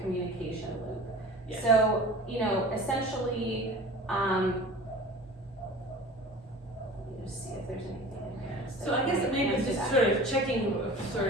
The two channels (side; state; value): both; normal; correlation 0.40